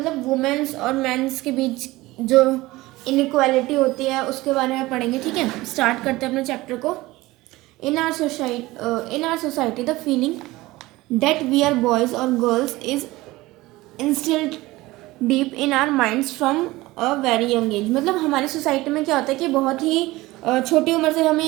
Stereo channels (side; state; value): left; quieter; 19.4 dB